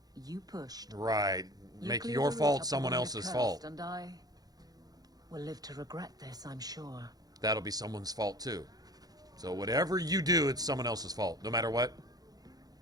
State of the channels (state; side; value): late; left; 0.19 ms